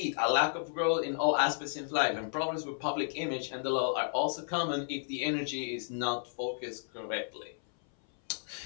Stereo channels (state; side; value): silent; right; 56 dB below the other